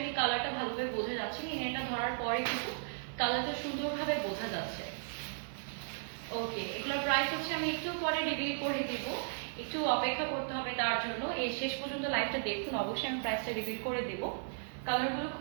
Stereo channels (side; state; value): left; silent; 54 dB below the other